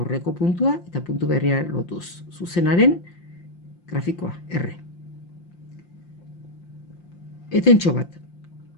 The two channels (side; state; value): right; late; 5.7 ms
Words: puntua eta puntu berria lotuz. Zuzenaren grafikoa, R. Etentxo bat.